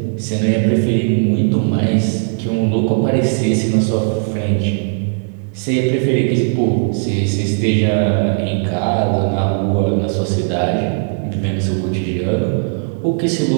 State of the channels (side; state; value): left; silent; digital silence